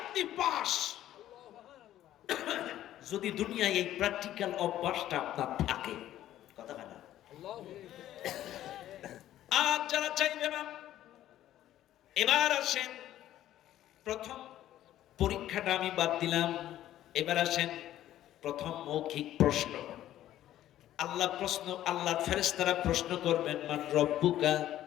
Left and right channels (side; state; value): right; quieter; 12.9 dB